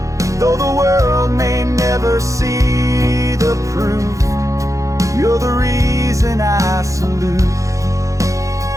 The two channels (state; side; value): late; left; 0.15 ms